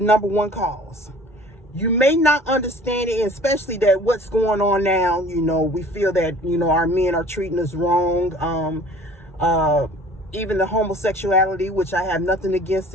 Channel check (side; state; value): both; normal; correlation 0.48